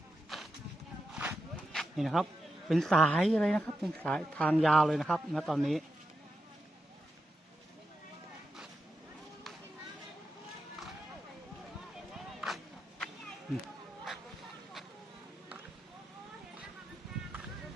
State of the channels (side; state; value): both; normal; correlation 0.88